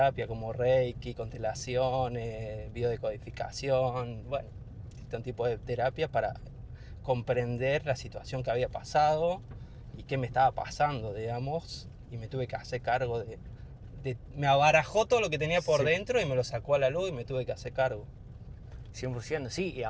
como Reiki, constelaciones, biodecodificación, bueno, distintos tipos de terapia para comprender la situación que había pasado y qué me estaba pasando, digamos, y me tuve que hacer cargo me abarajó todo lo que tenía por dentro y me lo sacó a la luz y me tuve que hacer cargo. 100%, sí, y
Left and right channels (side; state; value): both; identical; correlation 1.00